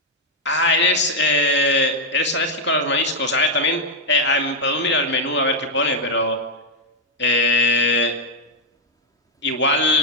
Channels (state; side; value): normal; both; correlation 0.00